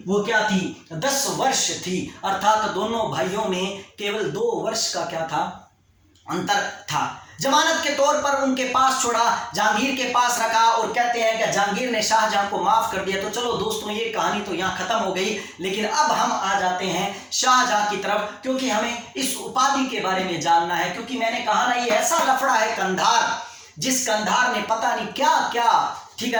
वो क्या थी? 10 वर्ष थी। अर्थात दोनों भाइयों में केवल 2 वर्ष का क्या था? अंतर था। जमानत के तौर पर उनके पास छोड़ा, जहांगीर के पास रखा, और कहते हैं कि जहांगीर ने शाहजहां को माफ कर दिया। तो चलो दोस्तों ये कहानी तो यहाँ खत्म हो गई, लेकिन अब हम आ जाते हैं शाहजहां की तरफ, क्योंकि हमें इस उपाधि के बारे में जानना है। क्योंकि मैंने कहा ना, ये ऐसा लफड़ा है कंधार, जिस कंधार ने पता नहीं क्या क्या, ठीक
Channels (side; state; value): both; identical; correlation 1.00